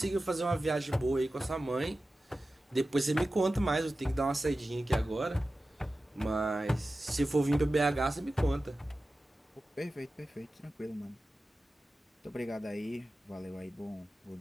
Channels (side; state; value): both; normal; correlation 0.94